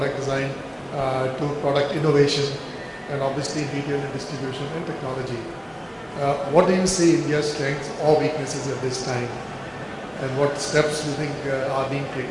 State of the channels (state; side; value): identical; both; correlation 1.00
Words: design to product innovation, and obviously retail and distribution and technology. What do you see India's strengths or weaknesses at this time? And what steps do you think are being